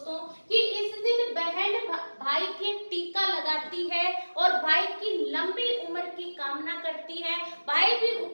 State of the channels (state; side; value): inverted; both; correlation -1.00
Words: कि इस दिन बहन भाई के टीका लगाती है और भाई की लंबी उम्र की कामना करती है। भाई भी